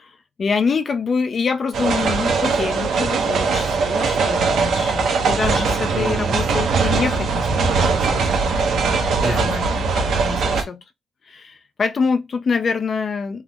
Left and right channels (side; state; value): both; normal; correlation 0.74